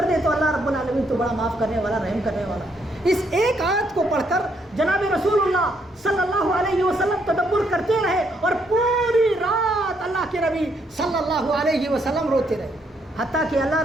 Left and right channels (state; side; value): normal; both; correlation 0.73